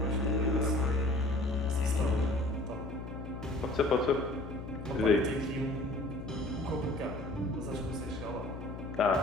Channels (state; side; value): noise; left; hum, 9 dB below the sound